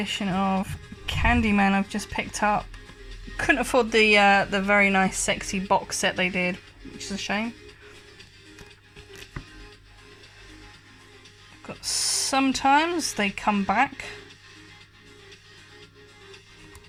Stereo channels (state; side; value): identical; both; correlation 1.00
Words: of Candyman I've just picked up. Couldn't afford the very nice sexy box set they did, which is a shame. Got Sometimes They Come Back.